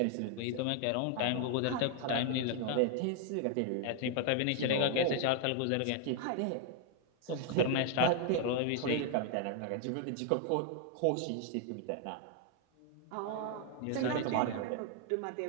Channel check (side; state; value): both; different; correlation 0.00